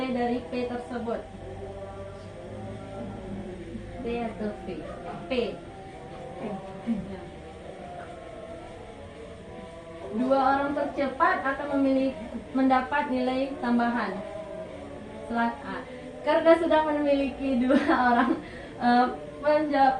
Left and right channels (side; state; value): both; identical; correlation 1.00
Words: dari P tersebut. P atau P? P. Dua orang tercepat akan mendapat nilai tambahan. Karena sudah memiliki 2 orang